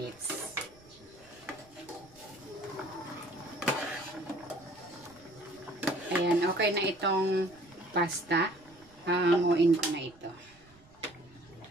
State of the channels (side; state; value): right; noise; rumble, 27 dB below the sound